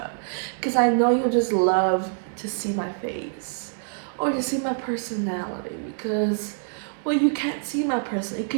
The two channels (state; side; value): silent; left; digital silence